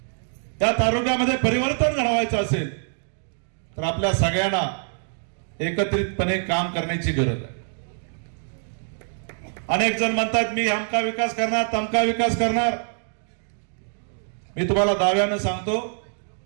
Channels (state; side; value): silent; left; 62 dB below the other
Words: त्या तालुक्यामध्ये परिवर्तन घडवायचं असेल, तर आपल्या सगळ्यांना एकत्रितपणे काम करण्याची गरज आहे. अनेक जण म्हणतात मी अमका विकास करणार, तमका विकास करणार. मी तुम्हाला दाव्यानं सांगतो,